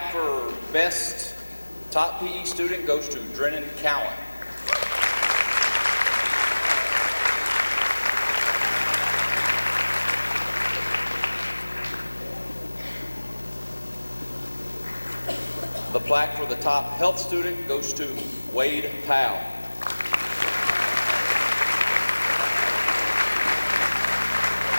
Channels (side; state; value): both; inverted; correlation -1.00